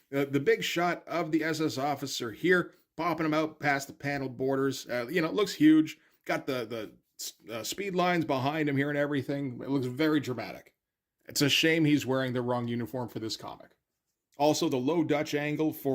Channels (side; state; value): both; identical; correlation 1.00